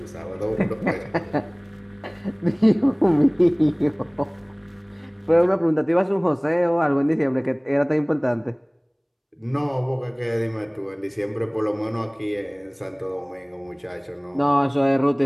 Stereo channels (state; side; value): identical; both; correlation 1.00